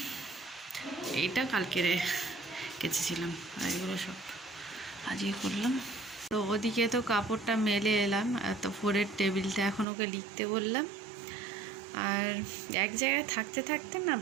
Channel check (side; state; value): left; drops out; at 9.9 s